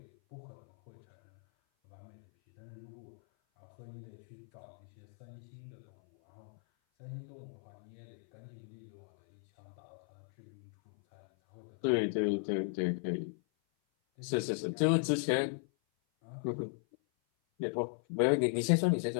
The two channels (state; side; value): silent; right; 53 dB below the other